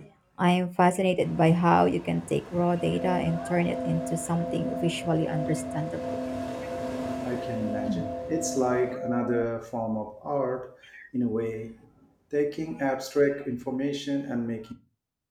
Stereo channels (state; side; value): identical; both; correlation 1.00